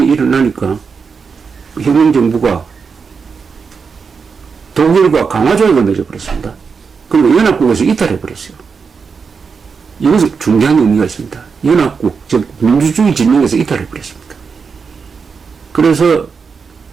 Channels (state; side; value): quieter; left; 5.5 dB